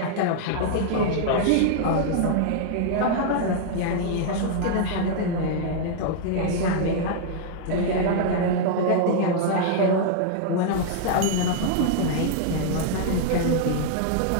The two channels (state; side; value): different; both; correlation -0.01